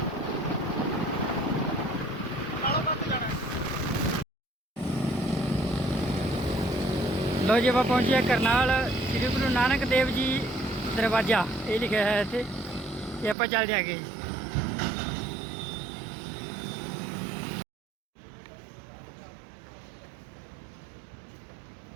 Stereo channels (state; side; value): drops out; left; at 13.4 s